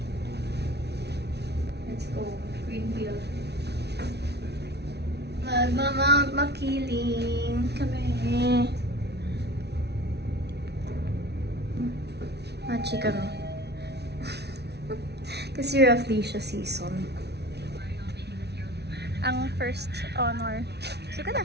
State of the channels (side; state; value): left; late; 0.49 ms